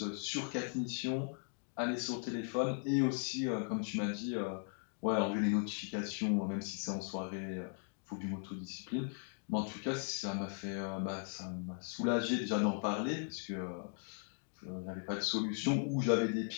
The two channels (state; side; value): silent; right; 52 dB below the other